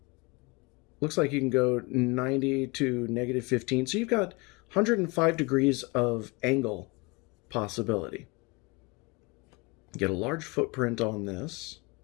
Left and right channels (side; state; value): right; quieter; 26.2 dB